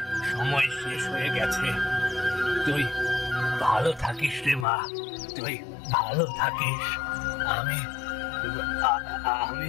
সময় শেষ হয়ে গেছে। তুই ভালো থাকিস রে মা, তুই ভালো থাকিস। আমি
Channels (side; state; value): right; drops out; at 4.7 s